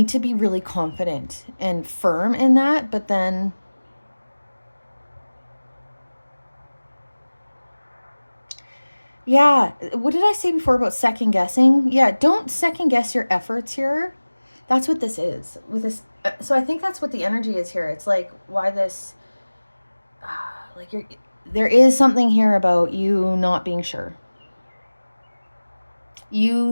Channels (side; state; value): both; inverted; correlation -1.00